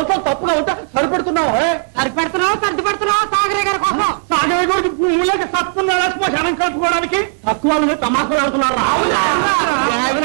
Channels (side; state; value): left; silent; digital silence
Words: తప్పుగా ఉంటా సరిపెడుతున్నావు సరిపెడుతున్నావు సాగరే గారి కోసం సాగరే గారికి భూములకి తప్పున్నారా శ్మశానం కలుపుకోవడానికి తక్కువ తమాషలు ఆడుతున్నారు